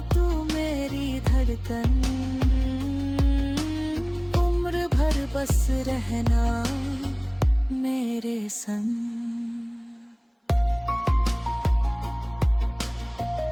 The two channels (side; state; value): both; identical; correlation 1.00